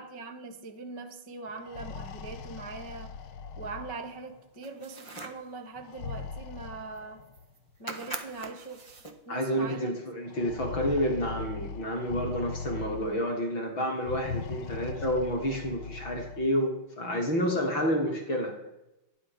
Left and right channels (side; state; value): right; late; 5.8 ms